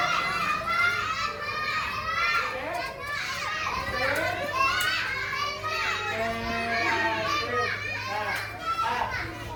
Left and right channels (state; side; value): identical; both; correlation 1.00